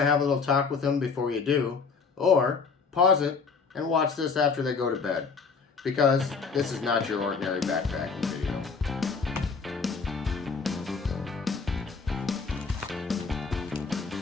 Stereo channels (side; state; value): right; quieter; 5.1 dB